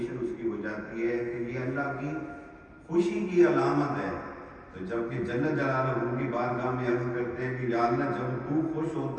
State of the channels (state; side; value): identical; both; correlation 1.00